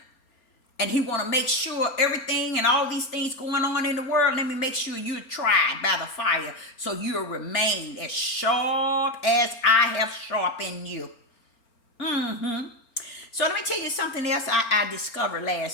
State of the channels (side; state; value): right; late; 4.4 ms